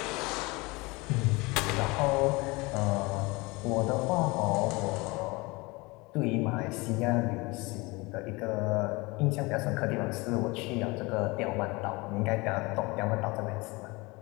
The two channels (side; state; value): right; quieter; 24.4 dB